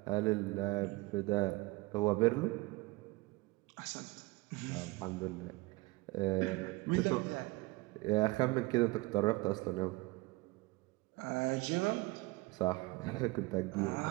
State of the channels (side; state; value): left; quieter; 22.5 dB